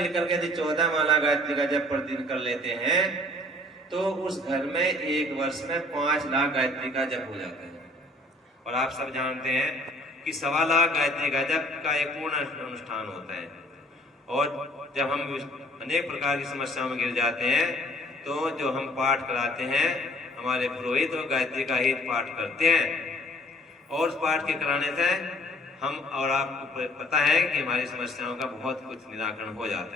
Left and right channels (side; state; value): both; normal; correlation 0.55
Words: के यदि 14 माला गायत्री का जप प्रतिदिन कर लेते हैं तो उस घर में एक वर्ष में 5 लाख गायत्री का जप हो जाता है। और आप सब जानते हैं कि 1.25 लाख गायत्री का जप का एक पूर्ण अनुष्ठान होता है। और जब हम अनेक प्रकार की समस्याओं में गिर जाते हैं तो जो हम पाठ कराते हैं हमारे पुरोहित और गायत्री का ही पाठ करते हैं और उस पाठ के कराने से हम और आपको पता है कि हमारी समस्याओं का बहुत कुछ निराकरण हो जाता